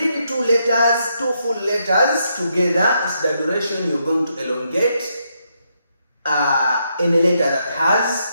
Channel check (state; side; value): inverted; both; correlation -0.78